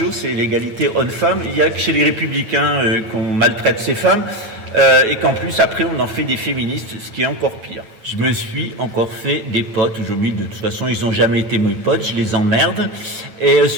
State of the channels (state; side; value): late; left; 9.0 ms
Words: c'est l'égalité homme-femme. Il y a que chez les républicains qu'on maltraite ces femmes. Et qu'en plus après on en fait des féministes, ce qui est encore pire. Je me suis encore fait des potes aujourd'hui, de toute façon ils n'ont jamais été mes potes, je les emmerde, et